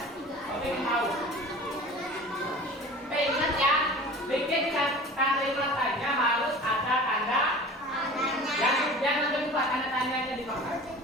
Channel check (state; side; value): normal; both; correlation 0.40